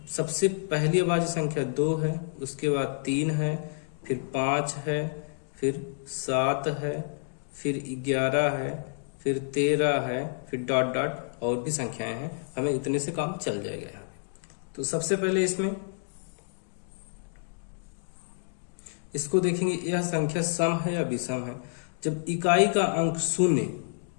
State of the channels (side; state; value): right; silent; digital silence